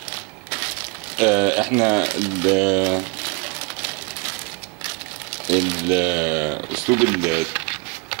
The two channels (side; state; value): left; quieter; 30.4 dB